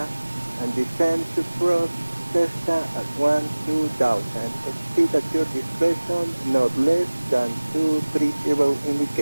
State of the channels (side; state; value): both; inverted; correlation -1.00